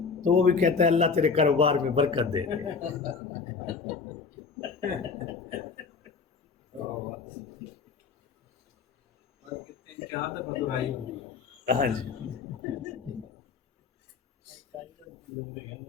تو وہ بھی کہتا ہے اللہ تیرے کاروبار میں برکت دے. ہاں جی.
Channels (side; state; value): right; quieter; 5.3 dB